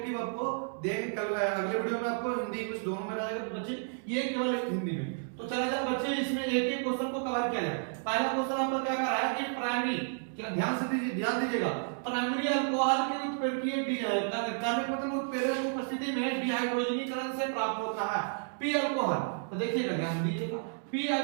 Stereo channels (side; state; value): left; silent; digital silence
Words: आपको देंगे। कल अगले वीडियो में आपको हिंदी इंग्लिश दोनों में रहेगा, तो बच्चे ये केवल हिंदी में। तो चला जाए बच्चे, इसमें एक एक क्वेश्चन को कवर किया जाए। पहला क्वेश्चन आपका क्या कर रहा है कि प्राइमरी, ध्यान से ध्यान दीजिएगा, प्राइमरी अल्कोहल के उत्प्रेरकीय कार्बनिक मतलब उत्प्रेरक की उपस्थिति में डिहाइड्रोजनीकरण से प्राप्त होता है पी अल्कोहल। तो देखिएगा, ध्यान दीजिएगा, पी